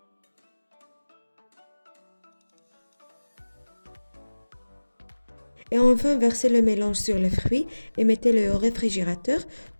Et enfin, versez le mélange sur les fruits et mettez-le au réfrigérateur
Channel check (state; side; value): inverted; both; correlation -1.00